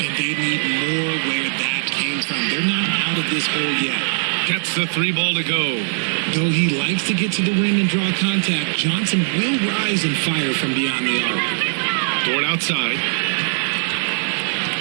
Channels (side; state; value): left; silent; digital silence